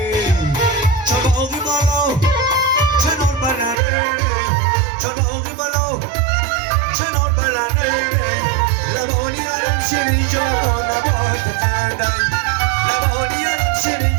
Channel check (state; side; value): drops out; left; at 3.8 s